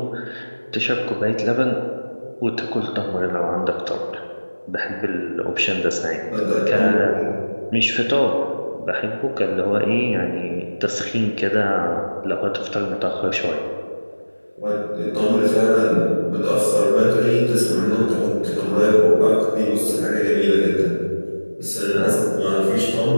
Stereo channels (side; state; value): both; inverted; correlation -1.00